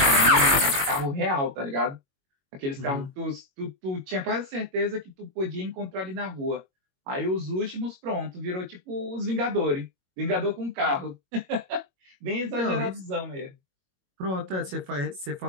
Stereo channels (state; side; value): late; left; 22 ms